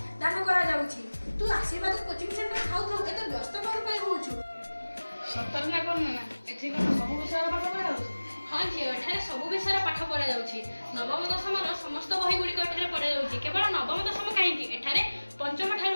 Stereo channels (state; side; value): inverted; both; correlation -1.00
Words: ଦାନ କରାଯାଉଛି। ତୁ ଆଶୀର୍ବାଦ କୋଚିଂ ସେଣ୍ଟର ଥାଉ ଥାଉ ଏତେ ବ୍ୟସ୍ତ କ'ଣ ପାଇଁ ହେଉଛୁ? ସତରେ ନା କ'ଣ ନା? ଏଠି କ'ଣ ସବୁ ବିଷୟର ପାଠ ପଢ଼ାଯାଉଛି? ହଁ ଝିଅ, ଏଠାରେ ସବୁ ବିଷୟର ପାଠ ପଢ଼ାଯାଉଛି। ନବମ ଦଶମର ସମସ୍ତ ବହି ଗୁଡ଼ିକ ଏଠାରେ ପଢ଼ାଯାଉଛି। କେବଳ ନବମ ଦଶମ କାହିଁକି, ଏଠାରେ ପଞ୍ଚମ ଠାରୁ